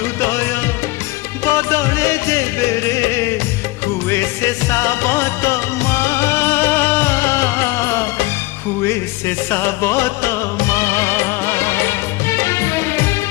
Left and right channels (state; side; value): quieter; right; 20.7 dB